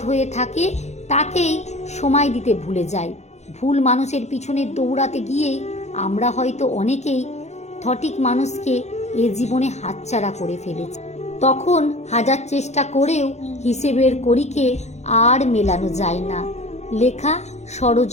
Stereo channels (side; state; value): right; late; 0.33 ms